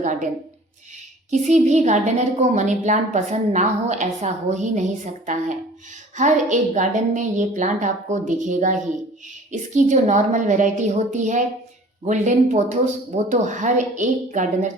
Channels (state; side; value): normal; both; correlation 0.47